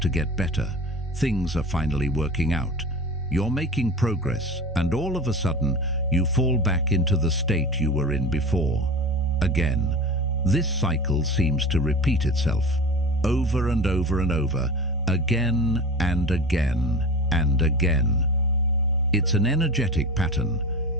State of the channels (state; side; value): normal; both; correlation 0.32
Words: get better. Things are finally working out. You're making progress, and all of a sudden, you fall back into the state you were in before. Again, this cycle seems to repeat itself, over and over and over, again and again and again. It's an energetic pattern.